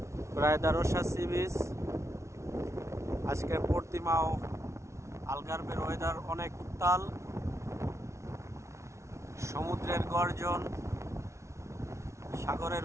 রায়দারসা sea beach. আজকে পর্তিমাও আলগার্বের weather অনেক উত্তাল, সমুদ্রের গর্জন,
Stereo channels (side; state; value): left; late; 0.13 ms